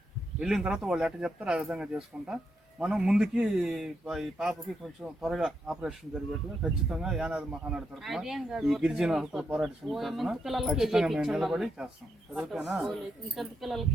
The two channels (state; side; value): normal; both; correlation 0.81